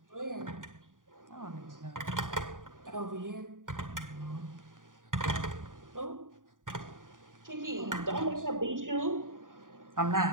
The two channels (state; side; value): late; left; 0.89 ms